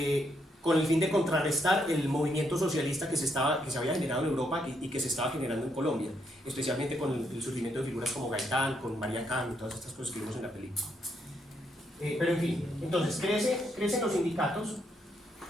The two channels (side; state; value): both; normal; correlation 0.76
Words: con el fin de contrarrestar el movimiento socialista que se había generado en Europa y que se estaba generando en Colombia, especialmente con el surgimiento de figuras como Gaitán, con María Cam y todas estas cosas que vimos en la película. Pero en fin, entonces crecen los sindicatos.